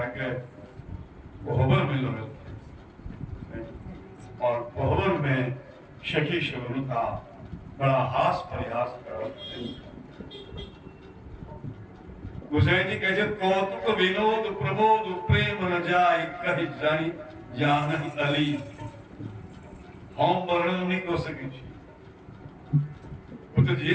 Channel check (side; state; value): both; identical; correlation 1.00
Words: के कोहबर में लोग और कोहबर में सखी शबन का बड़ा हास प्रयास कर गोसाई जी कहे कौतुक विनोद प्रबोध प्रेम न जाय कही जानी जानन अली हम वर्णन नहीं कर सके वो तो जे